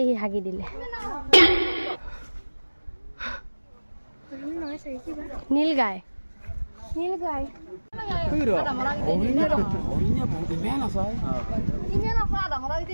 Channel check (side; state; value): both; inverted; correlation -1.00